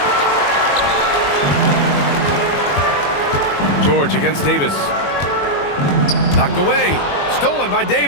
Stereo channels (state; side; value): late; right; 21 ms